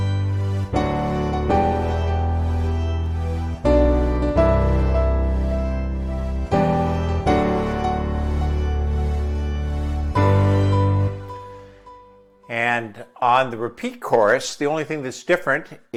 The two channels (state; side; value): identical; both; correlation 1.00